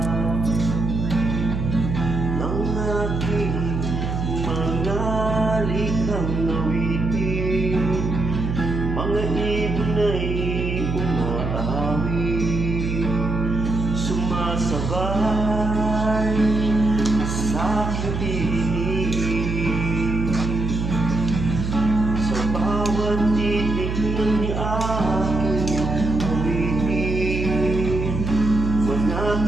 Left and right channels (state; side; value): noise; right; hum, 2 dB below the sound